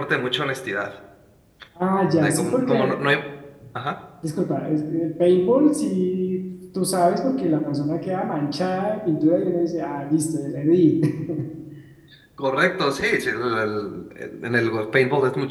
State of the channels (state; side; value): identical; both; correlation 1.00